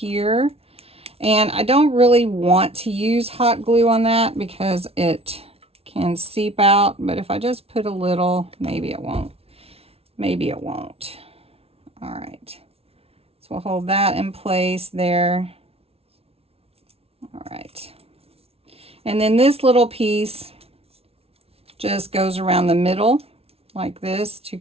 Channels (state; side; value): late; left; 0.29 ms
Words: And I don't really want to use hot glue on that because it can seep out. But if I just put a little, maybe it won't. Maybe it won't. All right. So we'll hold that in place there. All right. And then this little piece just goes around the middle like this to